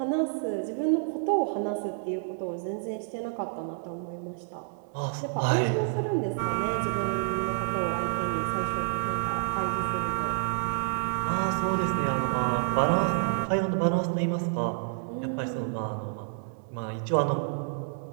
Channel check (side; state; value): left; silent; digital silence